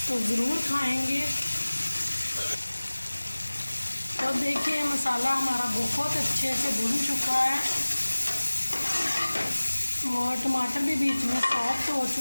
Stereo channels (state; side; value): inverted; both; correlation -1.00